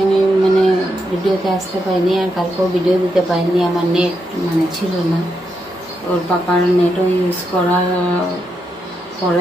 আমি ভিডিওতে আসতে পারিনি, আর কালকেও ভিডিও দিতে পারিনি। আমার নেট ছিল না, ওর পাপার নেটও ইউজ করার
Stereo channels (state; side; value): normal; both; correlation 0.82